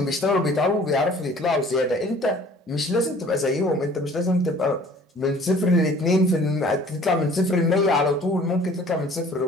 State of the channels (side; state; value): both; normal; correlation 0.51